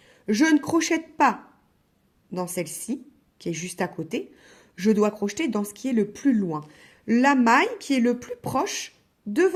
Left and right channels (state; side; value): identical; both; correlation 1.00